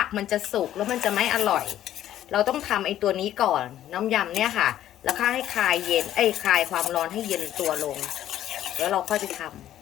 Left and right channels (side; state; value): right; quieter; 12.2 dB